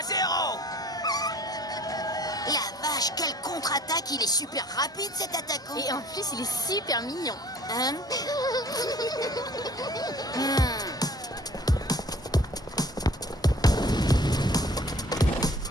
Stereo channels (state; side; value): normal; both; correlation 0.51